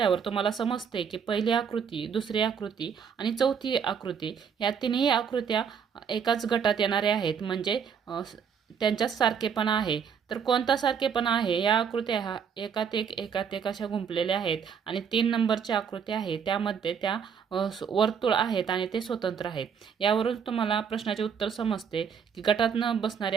तुम्हाला समजते की पहिली आकृती, दुसरी आकृती आणि चौथी आकृती या तिन्ही आकृत्या एकाच गटात येणाऱ्या आहेत, म्हणजे त्यांच्यात सारखेपणा आहे। तर कोणता सारखेपणा आहे? या आकृत्या एकात एक अशा गुंफलेल्या आहेत आणि 3 नंबरची आकृती आहे त्यामध्ये त्या वर्तुळ आहेत आणि ते स्वतंत्र आहेत। यावरून तुम्हाला प्रश्नाचे उत्तर समजते की गटात न बसणारी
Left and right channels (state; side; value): quieter; left; 7.1 dB